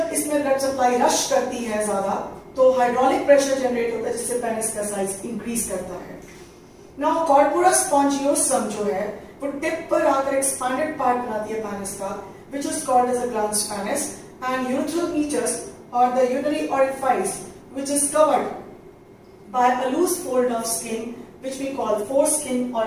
इसमें blood supply rush करती है ज्यादा तो hydraulic pressure generate होता है जिससे पेनिस का साइज इंक्रीज करता है. नाउ कॉर्पोरा स्पॉन्जियोसम जो है वो टिप पर आकर एक्सपांडेड पार्ट बनाती है पेनिस का, which is called as a glans penis, and urethral meatus or the urinary orifice, which is covered by a loose fold of skin which we call foreskin or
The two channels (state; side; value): identical; both; correlation 1.00